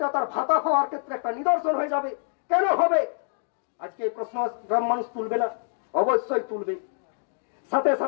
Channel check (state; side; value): silent; right; digital silence